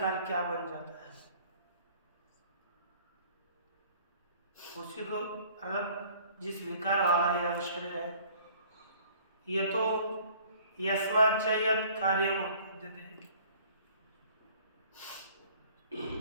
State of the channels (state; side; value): inverted; both; correlation -0.53